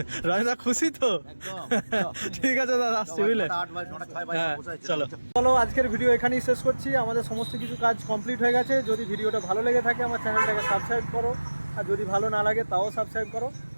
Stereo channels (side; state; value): both; inverted; correlation -1.00